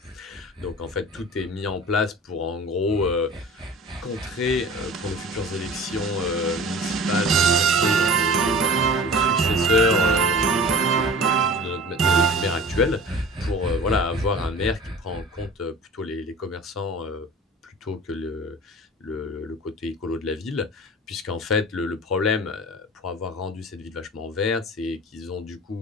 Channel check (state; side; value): normal; both; correlation 0.40